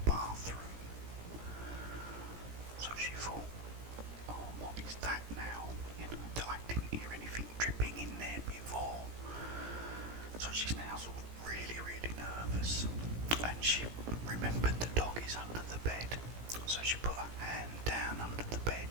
bathroom. So she thought, oh, what is that now? I didn't hear anything dripping in there before. So she's now sort of really, really nervous. And she remembered the dog is under the bed. So she put her hand down under the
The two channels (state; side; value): late; left; 17 ms